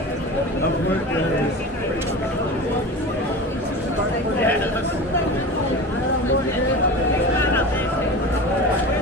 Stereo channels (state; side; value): normal; both; correlation 0.31